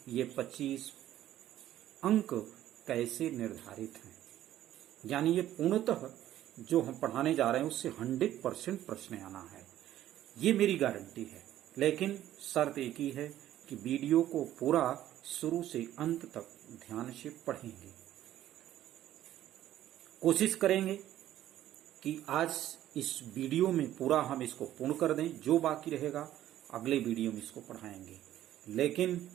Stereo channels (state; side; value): quieter; left; 12.8 dB